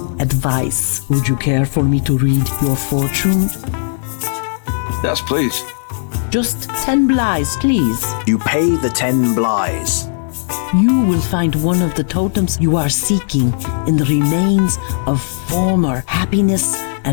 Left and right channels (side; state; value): right; silent; digital silence